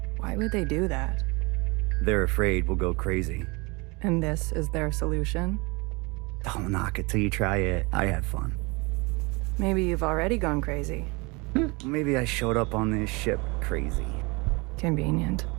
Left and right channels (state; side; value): quieter; left; 27.2 dB